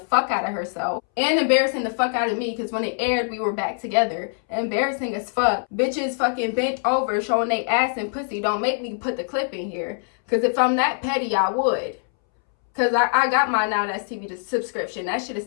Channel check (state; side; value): silent; right; 63 dB below the other